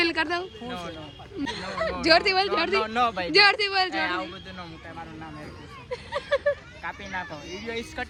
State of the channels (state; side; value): identical; both; correlation 1.00